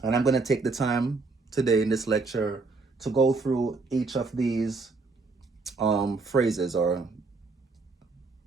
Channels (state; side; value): quieter; left; 3.9 dB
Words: And I'm going to take the time today in this lecture to go through each of these phrases. Or